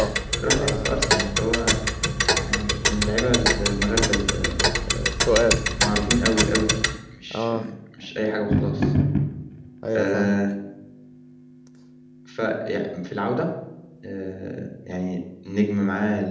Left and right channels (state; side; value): identical; both; correlation 1.00